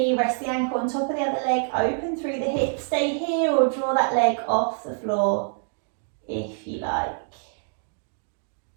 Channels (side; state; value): left; silent; 61 dB below the other